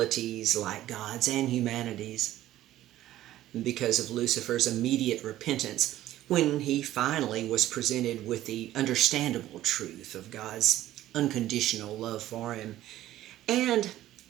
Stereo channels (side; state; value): left; quieter; 14.0 dB